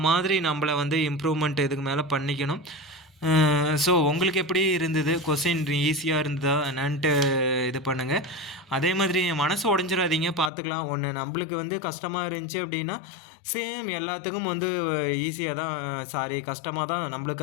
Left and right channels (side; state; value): right; drops out; at 10.5 s